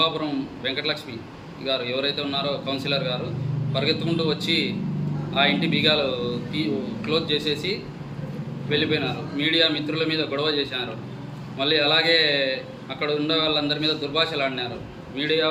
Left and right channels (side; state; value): both; identical; correlation 1.00